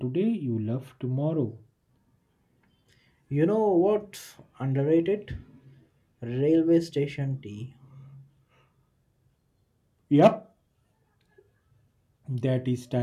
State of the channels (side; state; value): both; identical; correlation 1.00